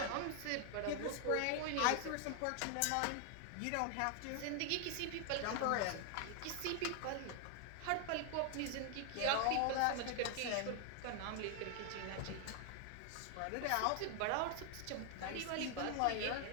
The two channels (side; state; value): both; different; correlation 0.00